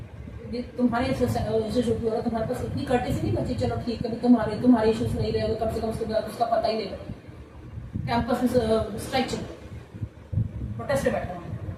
तुम्हारे इंस्टीट्यूट में हो रहा तुम्हारे पास इतनी कर्टेसी नहीं बची, चलो ठीक है तुम्हारे इश्यूज नहीं रहे, कम से कम उसके बाद उसका पता ही नहीं रहा, कैंपस में स्ट्राइक चल प्रोटेस्ट पे बैठा हुआ,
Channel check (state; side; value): identical; both; correlation 1.00